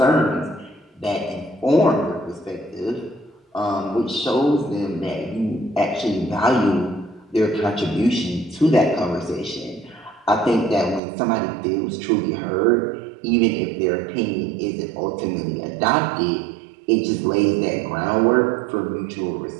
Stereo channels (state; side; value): drops out; left; at 11.0 s